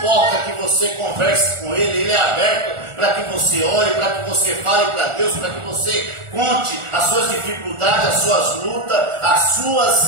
que você converse com Ele é aberto para que você ore, para que você fale para Deus, para que você conte as suas dificuldades, as suas lutas, as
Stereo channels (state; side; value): late; left; 1.4 ms